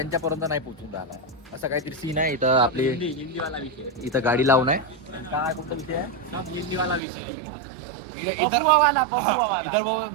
नाही पोहोचून राहिला. असं काहीतरी सीन आहे इथं. आपली हिंदीवाला विषय. इथं गाडी लावून आहे. काय कोणता विषय आहे? हिंदीवाला विषय. इधर इधर वो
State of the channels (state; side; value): drops out; left; at 7.0 s